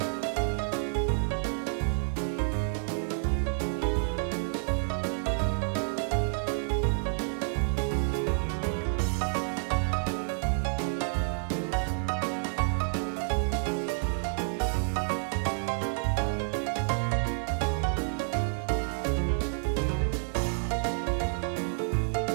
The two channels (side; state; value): left; silent; 58 dB below the other